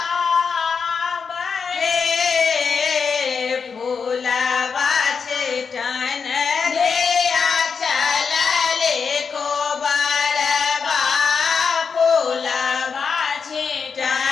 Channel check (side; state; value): right; quieter; 5.8 dB